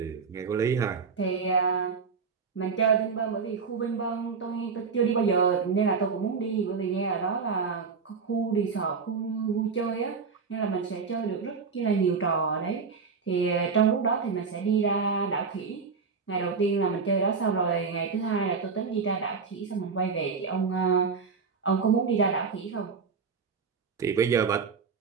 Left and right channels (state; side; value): quieter; left; 5.3 dB